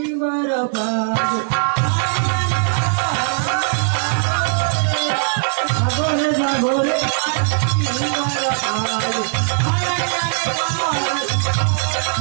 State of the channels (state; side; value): silent; left; digital silence